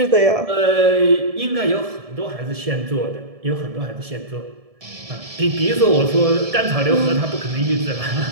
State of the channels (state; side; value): late; left; 1.7 ms